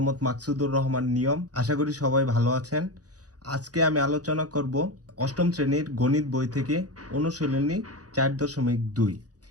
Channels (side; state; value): left; late; 0.68 ms